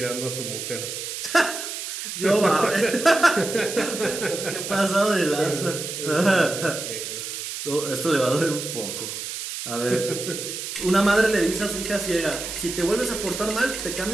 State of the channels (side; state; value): right; noise; hiss, 6 dB below the sound